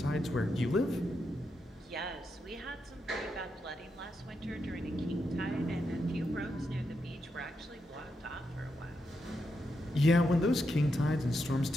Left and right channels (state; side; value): normal; both; correlation 0.84